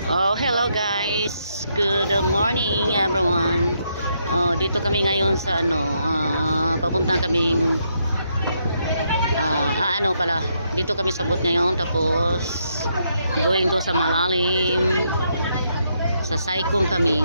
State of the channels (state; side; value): inverted; both; correlation -0.77